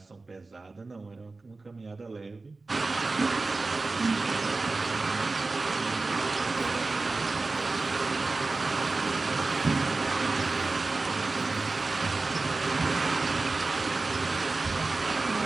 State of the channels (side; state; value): left; quieter; 3.6 dB